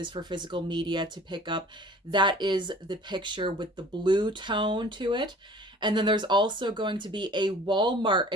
for physical media to pick up. That is the picture with the blue tone to it. And then there's also going to be a Walmart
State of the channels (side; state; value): both; normal; correlation 0.47